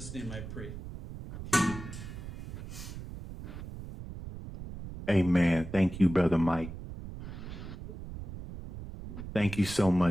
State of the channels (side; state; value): right; noise; rumble, 10 dB below the sound